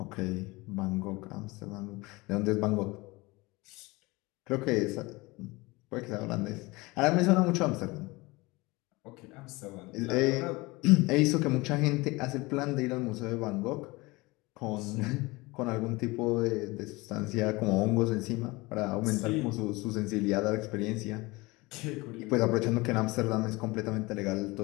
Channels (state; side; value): quieter; right; 23.0 dB